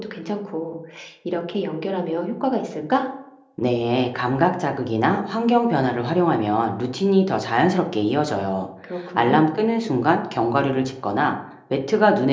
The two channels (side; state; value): both; identical; correlation 1.00